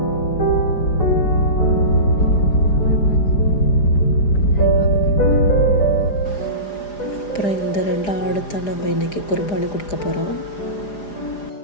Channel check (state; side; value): late; right; 4.9 ms